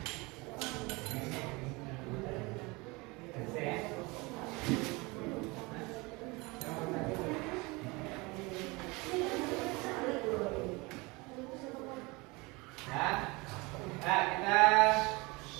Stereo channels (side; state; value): left; quieter; 25.1 dB